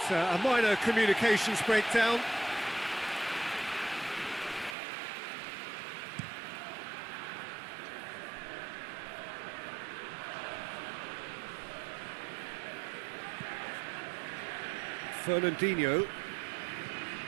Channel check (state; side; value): drops out; left; at 4.8 s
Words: a minor communications breakdown. Fernandinho.